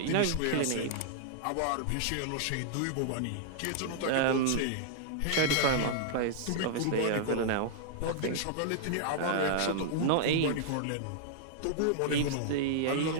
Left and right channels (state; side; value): different; both; correlation -0.01